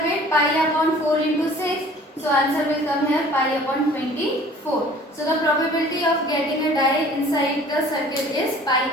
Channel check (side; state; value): both; normal; correlation 0.49